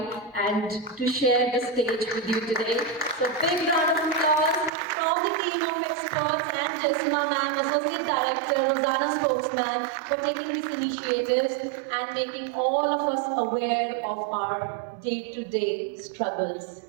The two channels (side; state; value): left; drops out; at 4.7 s